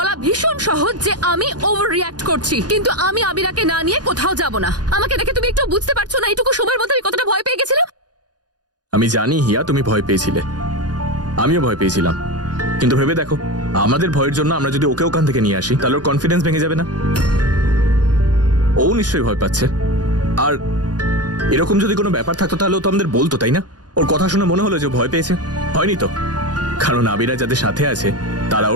ভীষণ সহজ যে আমি ওভার রিঅ্যাক্ট করছি, কিন্তু আমি আবিরাকে না নিয়ে কোথাও যাব না। আমাকে দেখে তুমি একটু বুঝতে পারছো না এইটুকু সময়ের মধ্যে আমি কতটা ভয় পেয়ে গেছিলাম? আমি জানি হিয়া, তুমি ভয় পেয়েছিলে, আমিও ভয় পেয়েছিলাম, কিন্তু ভেবে দেখো আমাদের ভয়ের জন্য আমরা যদি ওকে ওখান থেকে নিয়ে আসি তাহলে ওর কনফিডেন্স ভেঙে যাবে না? ও নিশ্চয়ই ভয় পাচ্ছে। আর এরকম যদি কোনো ব্যাপার থাকতো তাহলে ও তো আমাদের বলতো, তাই না? ওর কথা শুনে মনে হলো যে ভয় পেয়েছে। হয়নি তো, কারণ আবিরা যাদের সাথে আছে তারা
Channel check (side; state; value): left; late; 0.69 ms